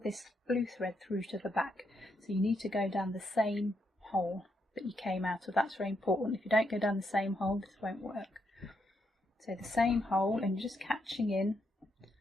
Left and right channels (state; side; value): normal; both; correlation 0.79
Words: this blue thread through to the back. So you need to go down the same hole that you came out of. That's very important. If you don't go down the same hole, this won't work. So the same hole, and you're just catching in